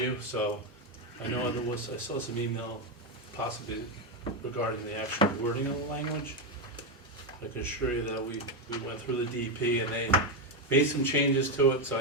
So I know I saw some email possibly regarding the actual wording of the language. I can assure you that we went through the DEP and they made some changes to it, so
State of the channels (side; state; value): both; normal; correlation 0.07